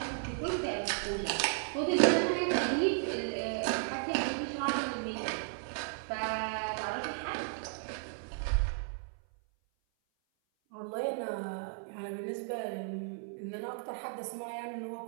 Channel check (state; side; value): silent; left; 55 dB below the other